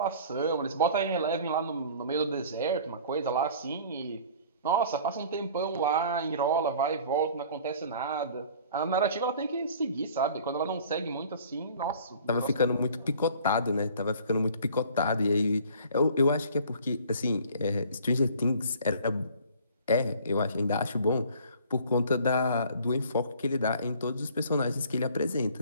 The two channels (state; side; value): inverted; both; correlation -0.50